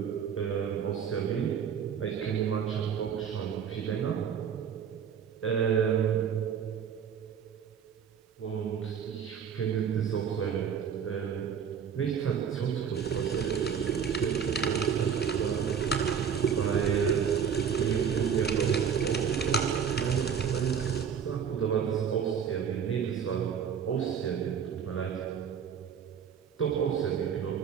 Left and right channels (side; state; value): left; quieter; 7.5 dB